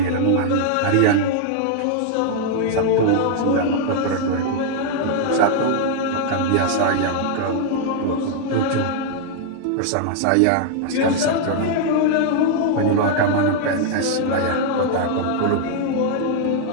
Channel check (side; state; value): both; different; correlation -0.01